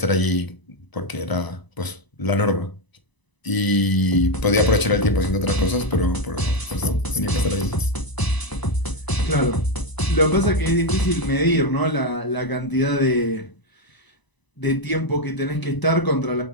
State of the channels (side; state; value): right; late; 1.0 ms